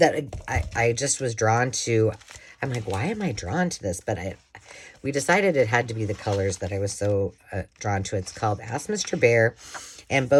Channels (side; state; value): both; identical; correlation 1.00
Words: I just was drawn to. I'm like, why am I drawn to this? But we decided it had to be the colors that I was so drawn to. It's called Ask Mr. Bear, and